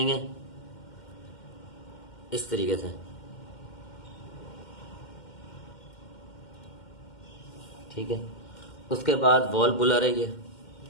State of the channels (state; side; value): late; right; 2.1 ms